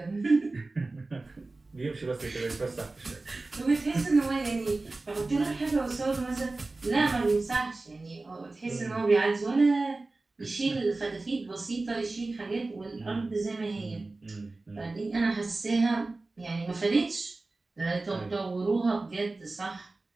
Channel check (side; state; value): left; quieter; 3.3 dB